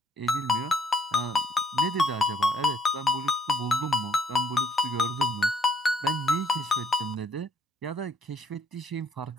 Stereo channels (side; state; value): both; normal; correlation 0.65